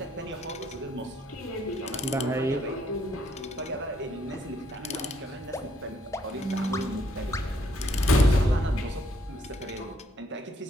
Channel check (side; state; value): both; normal; correlation 0.70